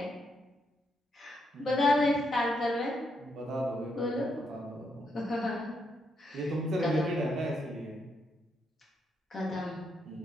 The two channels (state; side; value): normal; both; correlation 0.79